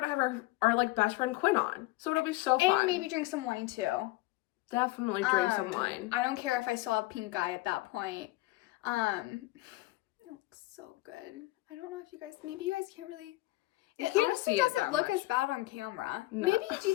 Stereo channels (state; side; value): quieter; right; 19.5 dB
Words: going to have our like, best friend Quinn on. So, it'll be so fun. And maybe drink some wine, too. Definitely drink some wine. I don't care if I still have pink eye at that point. It looks so good. I don't know if maybe you guys can't really... It honestly doesn't look as bad on camera. No. Maybe, do you